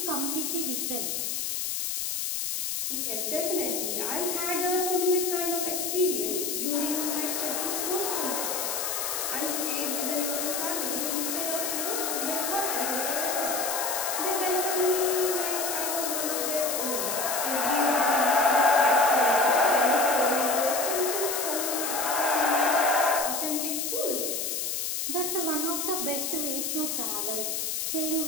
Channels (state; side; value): noise; left; hiss, 1 dB below the sound